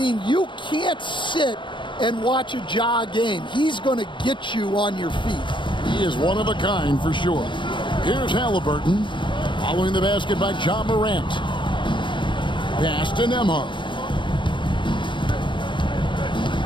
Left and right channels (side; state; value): right; late; 0.23 ms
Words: you can't sit and watch a Ja game. He's going to get you on your feet. He is one of a kind for sure. Here's Halliburton, following the basket by John Morant. Pass to Nembhard.